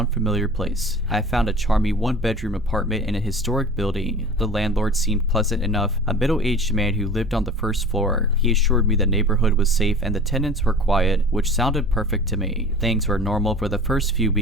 place. I found a charming 1-bedroom apartment in a historic building. The landlord seemed pleasant enough, a middle-aged man who lived on the first floor. He assured me the neighborhood was safe and the tenants were quiet, which sounded perfect to me. Things were normal for the first few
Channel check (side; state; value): both; normal; correlation 0.40